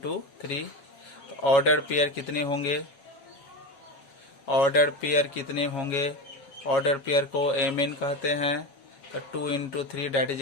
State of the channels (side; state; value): right; late; 7.5 ms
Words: 3। तो ऑर्डर पेयर कितने होंगे? ऑर्डर पेयर कितने होंगे? ऑर्डर पेयर को mn कहते हैं। तो 2 into 3 that is